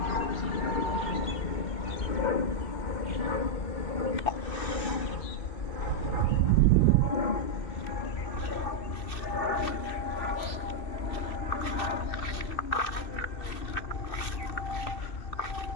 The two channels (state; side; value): late; right; 2.6 ms